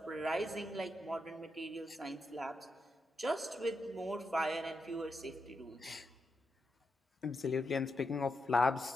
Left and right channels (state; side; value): normal; both; correlation 0.85